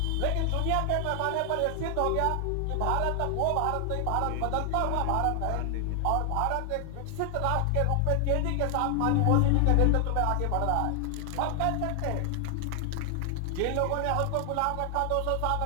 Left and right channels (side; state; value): both; different; correlation 0.00